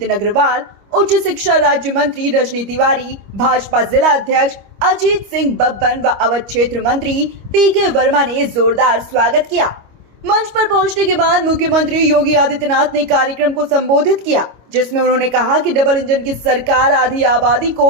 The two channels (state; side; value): late; left; 25 ms